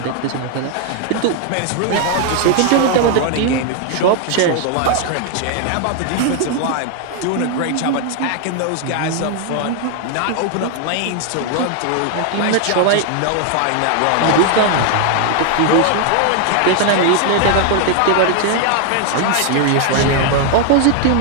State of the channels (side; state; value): both; different; correlation 0.00